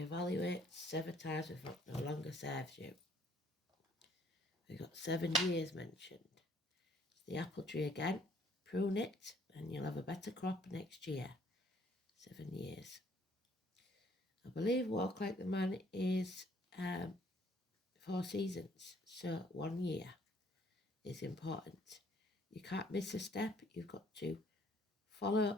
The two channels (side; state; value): both; normal; correlation 0.62